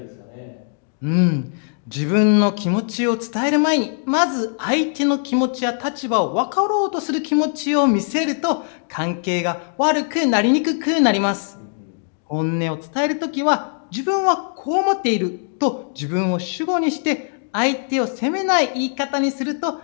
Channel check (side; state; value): right; silent; digital silence